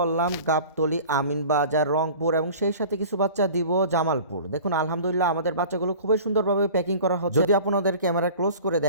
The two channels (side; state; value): both; inverted; correlation -0.42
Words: গাবতলী, আমিনবাজার, রংপুর এবং সেই সাথে কিছু বাচ্চা দিব জামালপুর। দেখুন আলহামদুলিল্লাহ আমাদের বাচ্চাগুলো খুবই সুন্দরভাবে প্যাকিং করা হচ্ছে। যদি আপনাদের ক্যামেরা ক্লোজ করে